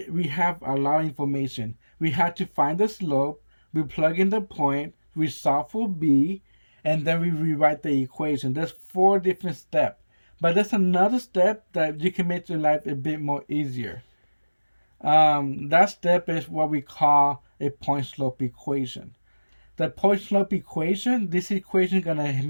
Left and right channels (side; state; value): both; inverted; correlation -1.00